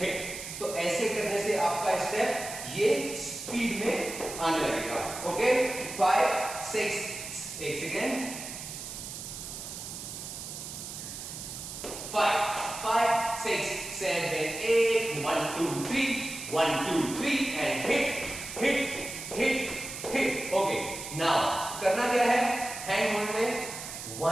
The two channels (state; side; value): noise; right; hiss, 9 dB below the sound